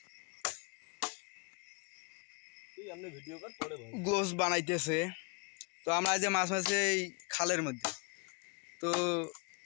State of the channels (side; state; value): right; quieter; 34.0 dB